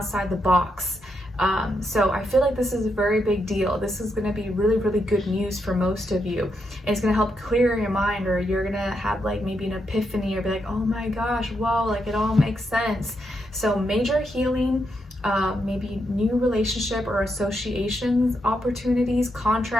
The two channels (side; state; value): both; normal; correlation 0.81